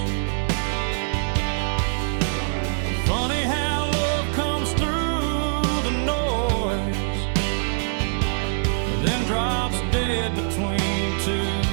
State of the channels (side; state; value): left; silent; digital silence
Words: Funny how love comes through the noise, then drops dead between two